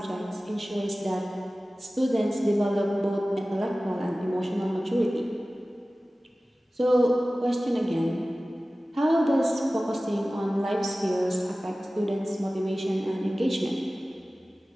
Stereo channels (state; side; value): normal; both; correlation 0.97